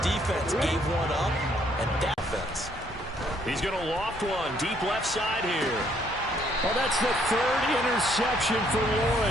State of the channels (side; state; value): both; normal; correlation 0.67